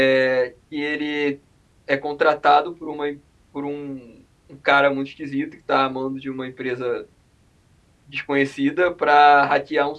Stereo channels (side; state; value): both; identical; correlation 1.00